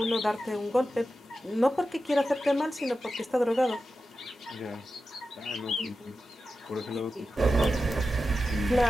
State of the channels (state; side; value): normal; both; correlation 0.92